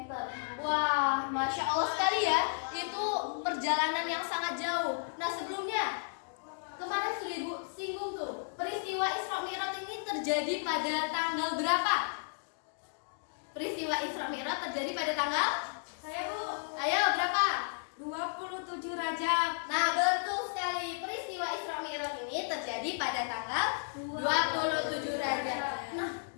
Wah, Masya Allah sekali ya. Itu perjalanan yang sangat jauh. Nah, sebelumnya kemarin sudah Ibu singgung tuh, peristiwa Isra Mi'raj ini terjadi pada tanggal berapa? Peristiwa Isra Mi'raj terjadi pada tanggal? Saya Bu. Ayo berapa? 27 Rajab. Nah, betul sekali. Peristiwa Isra Mi'raj ini terjadi pada tanggal 27 Rajab. Nah,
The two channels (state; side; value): silent; right; digital silence